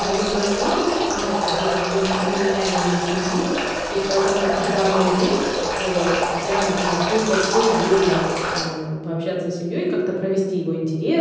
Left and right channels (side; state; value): both; identical; correlation 1.00